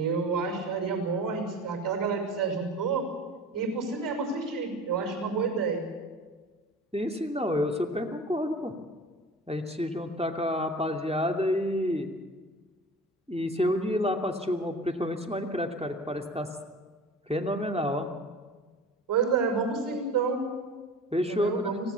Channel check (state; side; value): normal; both; correlation 0.38